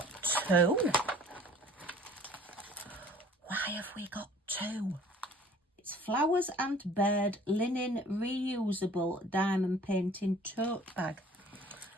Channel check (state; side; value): normal; both; correlation 0.51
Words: two. Why have we got two? It's flowers and bird linen reusable diamond painting tote bag.